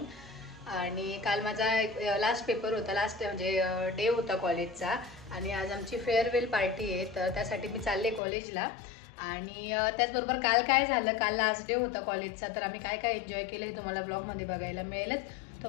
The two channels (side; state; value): right; drops out; at 8.2 s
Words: आणि काल माझा लास्ट पेपर होता, लास्ट म्हणजे डे होता कॉलेजचा. आणि आज आमची फेअरवेल पार्टी आहे, तर त्यासाठी मी चालले कॉलेजला. आणि त्याचबरोबर काल काय झालं, काल लास्ट डे होता कॉलेजचा, तर आम्ही काय काय एन्जॉय केलं हे तुम्हाला ब्लॉगमध्ये बघायला मिळेलच.